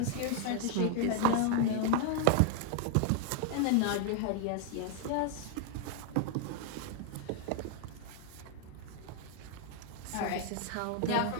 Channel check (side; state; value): both; different; correlation 0.00